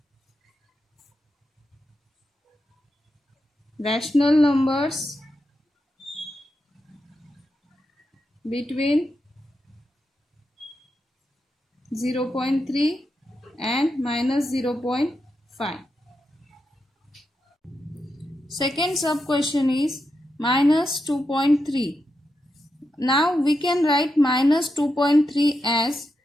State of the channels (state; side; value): normal; both; correlation 0.86